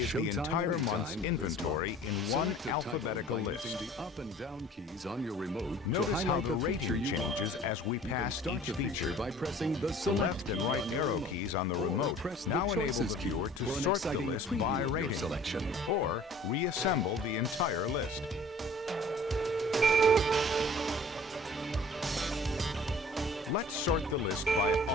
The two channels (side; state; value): both; normal; correlation 0.48